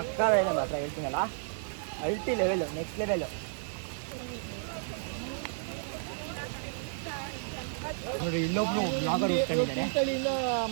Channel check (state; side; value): silent; left; digital silence